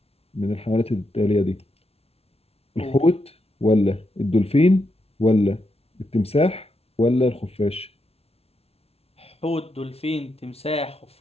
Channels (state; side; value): late; right; 0.30 ms